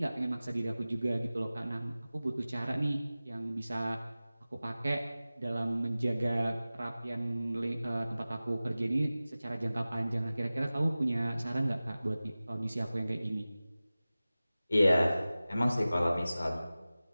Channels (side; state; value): both; inverted; correlation -0.97